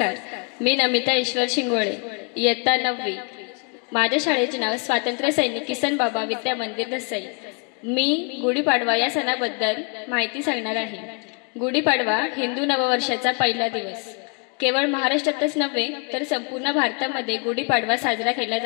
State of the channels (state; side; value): quieter; right; 35.0 dB